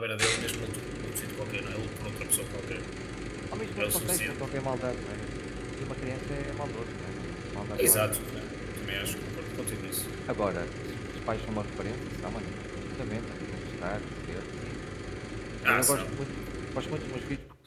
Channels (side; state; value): both; identical; correlation 1.00